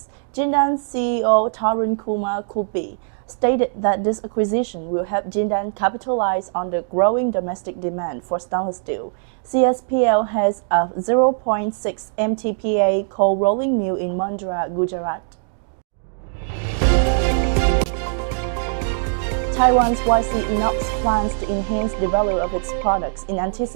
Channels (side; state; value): left; silent; digital silence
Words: Jindal CEO Tarun Kumar Kubi stated that this acquisition will help Jindal capitalize on the growing domestic demand for stainless steel. CSPL has a 0.6 MTPA cold rolling mill in Mundra, Gujarat. Taiwan's INOX plans to enhance the value of its products in